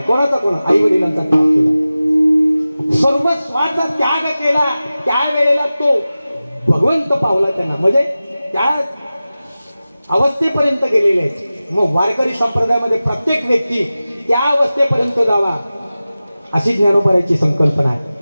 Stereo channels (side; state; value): both; inverted; correlation -0.96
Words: कोणाचा कोण आई वडिलांचा त्याग केला, सर्वस्वाचा त्याग केला. त्यावेळेला तो भगवंत पावला त्यांना, म्हणजे त्या अवस्थेपर्यंत गेलेले आहेत. मग वारकरी संप्रदायामध्ये प्रत्येक व्यक्ती त्या अवस्थेपर्यंत जावा अशी ज्ञानोबाराची संकल्पना आहे.